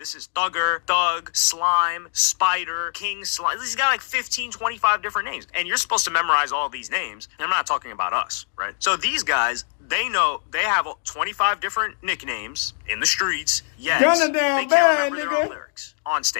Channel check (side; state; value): right; silent; 63 dB below the other